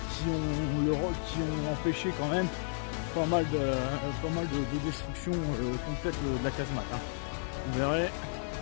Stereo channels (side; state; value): right; silent; digital silence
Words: ont empêché quand même pas mal de destruction complète de la casemate. Hein. Vous verrez,